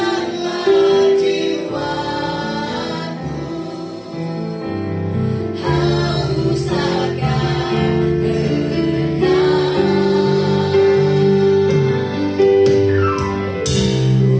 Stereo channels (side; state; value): both; identical; correlation 1.00